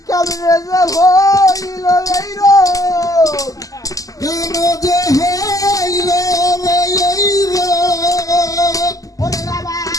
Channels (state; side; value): late; right; 0.17 ms